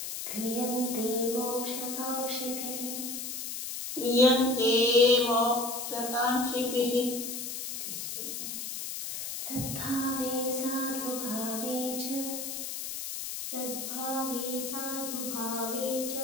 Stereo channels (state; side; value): noise; left; hiss, 5 dB below the sound